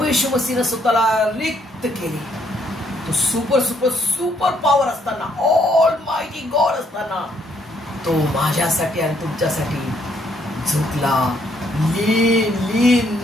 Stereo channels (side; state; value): both; normal; correlation 0.70